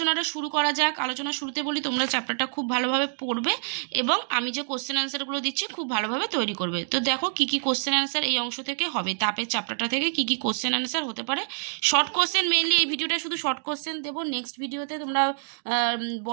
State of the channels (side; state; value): left; silent; digital silence